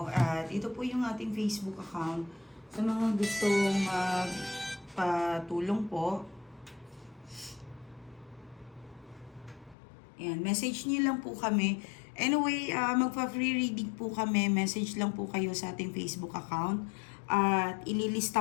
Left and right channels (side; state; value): right; drops out; at 9.8 s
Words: At ito po yung ating Facebook account. Sa mga gustong patulong po. Ayan, message niyo lang po kami. Anyway, magpa-free reading po kami. Message lang po kayo sa ating Facebook account. At